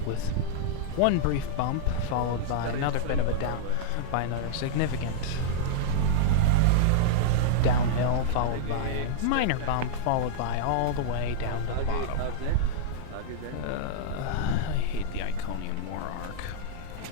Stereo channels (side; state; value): both; different; correlation -0.01